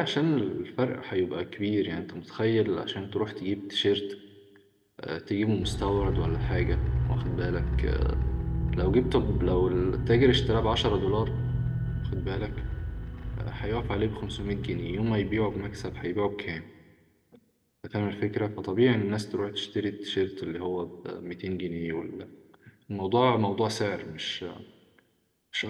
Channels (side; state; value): both; identical; correlation 1.00